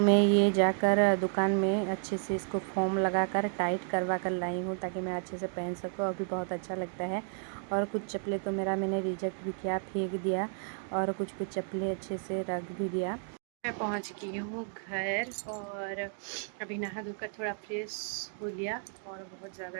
मैं ये जाकर दुकान में अच्छे से इसको फोम लगाकर टाइट करवा कर लाई हूँ ताकि मैं अच्छे से पहन सकूँ। अभी बहुत अच्छा लगता है। और कुछ चप्पलें तो मैंने रिजेक्ट भी किया, फेंक दिया, और कुछ चप्पलें अच्छे से रख भी दिया। मैं पहुँच गई हूँ घर, और अभी नहा धोकर थोड़ा फ्रेश हो लिया। और बहुत ज़्यादा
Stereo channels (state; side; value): silent; left; 56 dB below the other